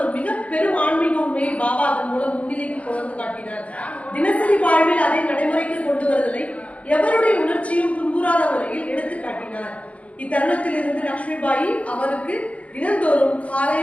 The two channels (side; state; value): right; late; 0.065 ms